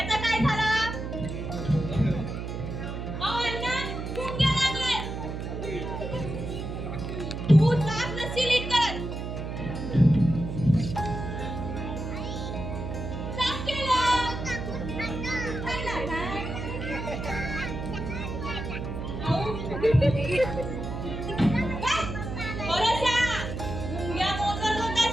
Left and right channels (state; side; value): noise; right; hum, 5 dB below the sound